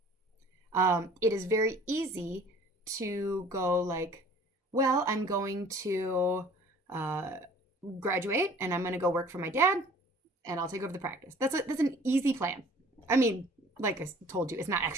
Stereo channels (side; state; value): both; normal; correlation 0.50